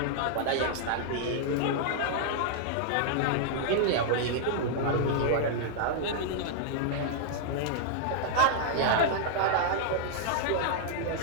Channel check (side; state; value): both; different; correlation -0.01